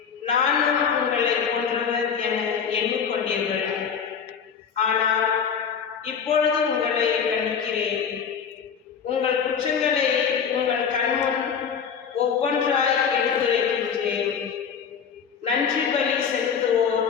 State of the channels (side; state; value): right; quieter; 7.0 dB